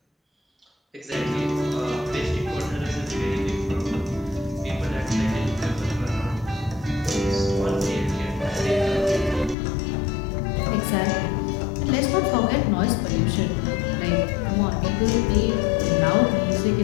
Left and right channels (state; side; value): drops out; right; at 9.6 s